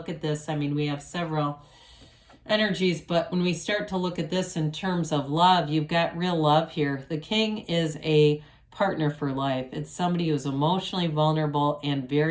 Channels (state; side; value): identical; both; correlation 1.00